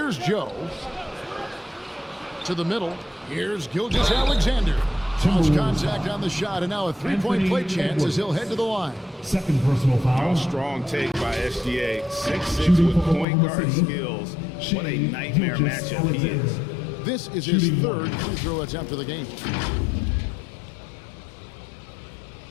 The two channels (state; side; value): drops out; right; at 13.2 s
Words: Joe. To the middle. Here's Gilgeous-Alexander. Cross contact on the shot, and now a 3-point play chance as he'll head to the line. Second personal foul. Strong take by SGA. 6'6" with point guard skills. What a nightmare matchup he is. This is his 3rd free throw attempt of the game.